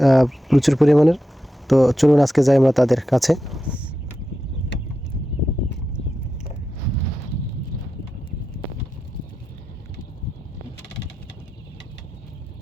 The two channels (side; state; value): both; normal; correlation 0.89